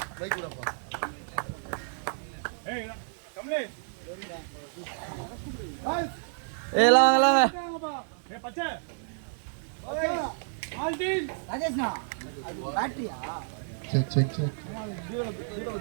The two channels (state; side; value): silent; left; digital silence